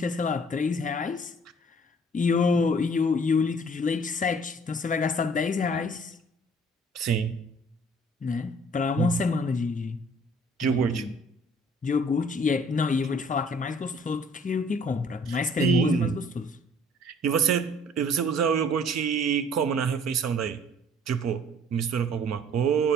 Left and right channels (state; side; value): normal; both; correlation 0.55